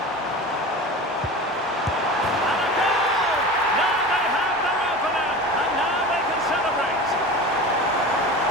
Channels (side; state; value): both; normal; correlation 0.33